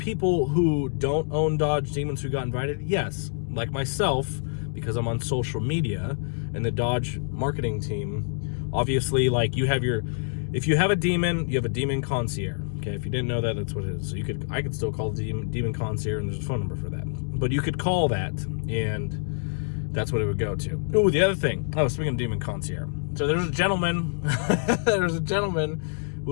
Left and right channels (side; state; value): right; silent; digital silence